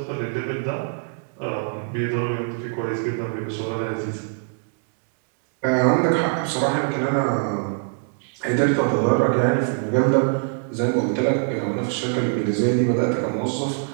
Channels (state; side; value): silent; left; 63 dB below the other